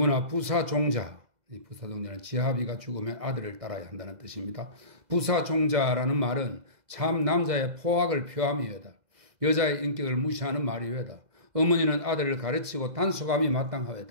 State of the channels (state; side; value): late; left; 2.0 ms